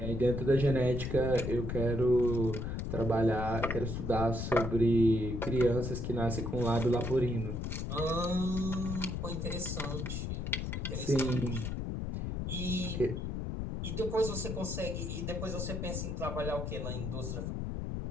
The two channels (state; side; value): noise; left; rumble, 3 dB below the sound